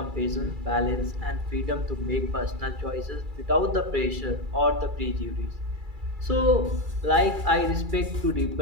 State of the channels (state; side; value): late; left; 2.3 ms